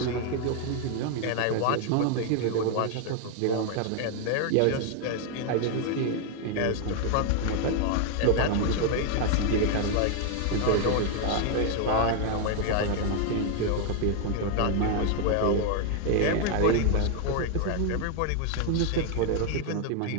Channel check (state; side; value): different; both; correlation 0.00